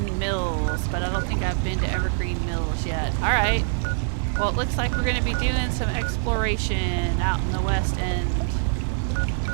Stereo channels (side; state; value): left; silent; 62 dB below the other